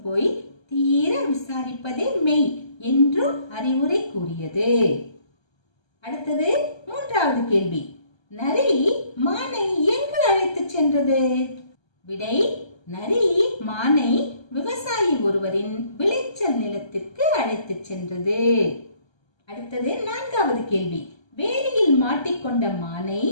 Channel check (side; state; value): right; late; 1.3 ms